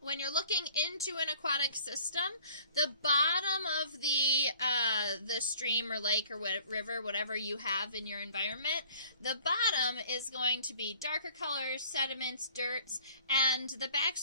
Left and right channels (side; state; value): both; inverted; correlation -0.51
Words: looking into an aquatic system, the bottom of the stream or lake or river, whatever you have in your environment, the bottom is going to be darker colors, sediments, dirts, and the